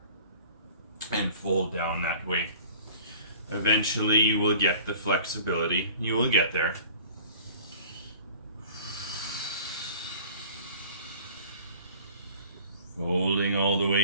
and fold down that way. Eventually you will get the flexibility. You will get there. Folding all the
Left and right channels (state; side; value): inverted; both; correlation -0.46